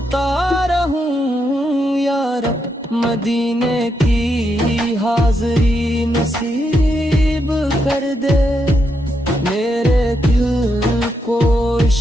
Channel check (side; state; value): both; normal; correlation 0.81